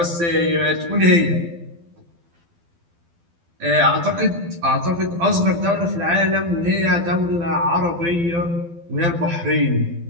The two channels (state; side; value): late; left; 12 ms